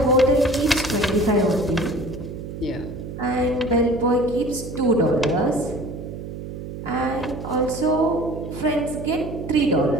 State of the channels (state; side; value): noise; right; hum, 9 dB below the sound